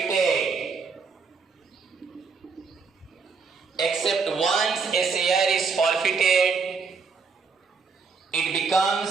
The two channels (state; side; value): quieter; left; 5.1 dB